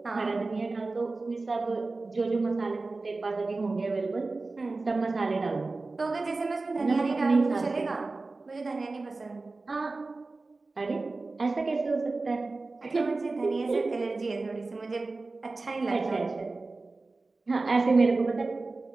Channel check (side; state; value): left; quieter; 3.5 dB